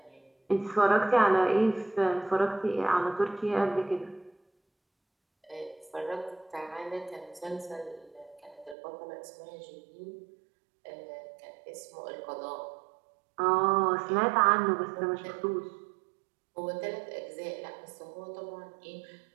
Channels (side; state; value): left; drops out; at 8.8 s